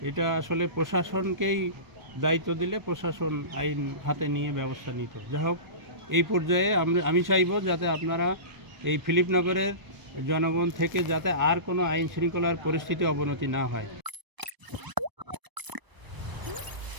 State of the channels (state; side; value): late; left; 1.0 ms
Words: এটা আসলে প্রশাসনকেই দায়িত্ব দিলে প্রশাসন আইন হাতে নিয়ে ব্যবস্থা নিত। যাই হোক, এই পর্যায়ে আমি চাইব যাতে আপনারা এই ফিলিপনগরের জনগণ থেকে যাতে আর কোনো আইন শৃঙ্খলার পরিস্থিতি অবনতি না হয়।